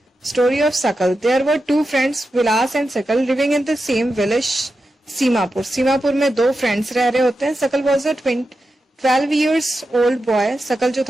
Story of Sakal. There were two friends, Vilas and Sakal, living in the same village Seemapur. Seemapur में दो फ्रेंड्स रह रहे होते हैं। Sakal was a 12 years old boy. Sakal जो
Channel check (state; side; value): normal; both; correlation 0.90